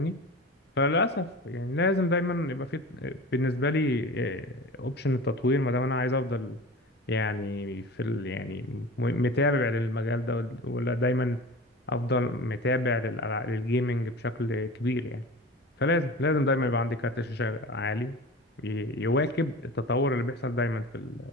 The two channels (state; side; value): normal; both; correlation 0.35